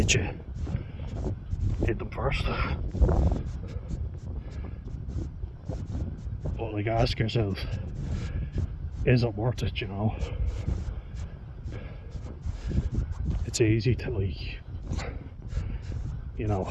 you, hit them first. But like, ask yourself, is it worth it, you know? It's easy to, like, you know,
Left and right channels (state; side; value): identical; both; correlation 1.00